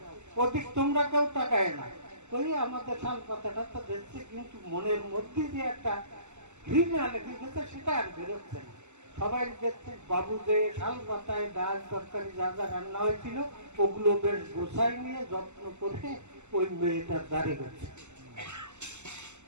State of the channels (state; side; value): late; left; 0.83 ms